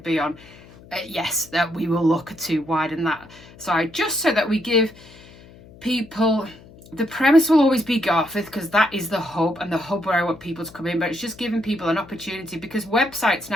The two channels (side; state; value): left; noise; hum, 22 dB below the sound